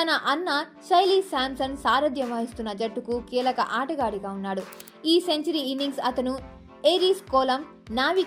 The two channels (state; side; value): identical; both; correlation 1.00